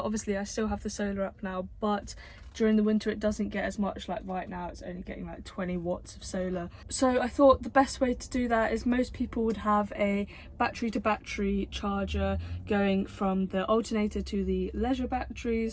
Obviously I still have the solar up now, but during the winter it doesn't get as much. Like right now it's only getting like 20 watts of solar. So I thought the best way to do that is most people would have a battery to battery charger going from the alternator to the leisure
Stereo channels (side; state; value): both; identical; correlation 1.00